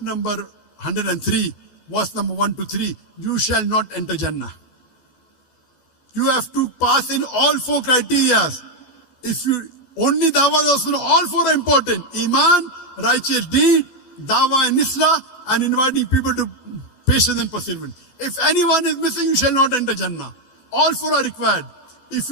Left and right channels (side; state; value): right; late; 14 ms